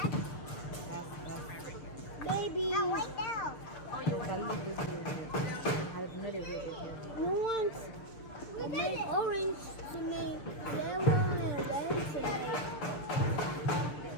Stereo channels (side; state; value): right; late; 6.7 ms